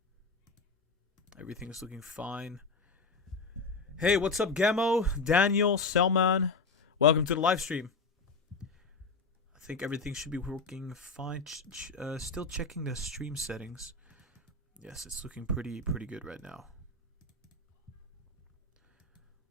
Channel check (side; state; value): right; quieter; 4.0 dB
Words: Everything is looking fine. Hey, what's up, Gamo, Daniel, Selman? Welcome to the live stream. I think everything should be working fine. Still checking the stream settings. Yes, it's looking pretty good right now.